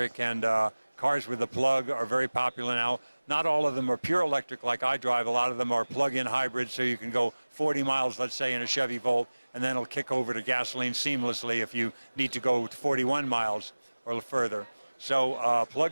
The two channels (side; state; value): both; inverted; correlation -1.00